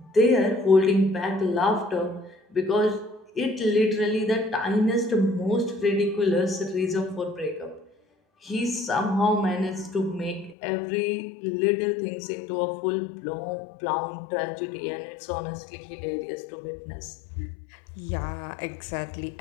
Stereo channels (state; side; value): drops out; right; at 10.6 s